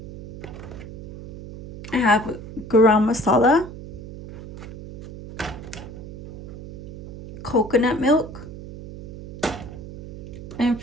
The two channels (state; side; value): noise; right; hum, 12 dB below the sound